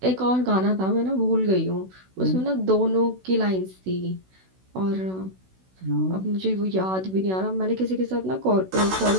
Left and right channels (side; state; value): left; late; 16 ms